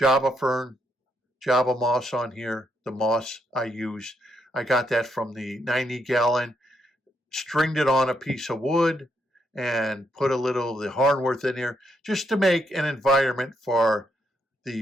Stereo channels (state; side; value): normal; both; correlation 0.78